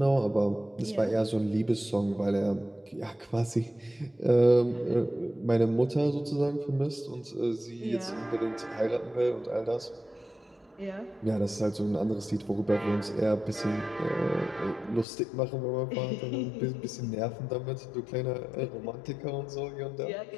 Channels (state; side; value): drops out; right; at 15.1 s